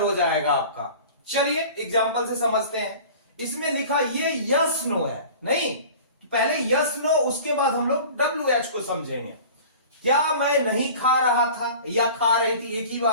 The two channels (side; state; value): both; inverted; correlation -0.41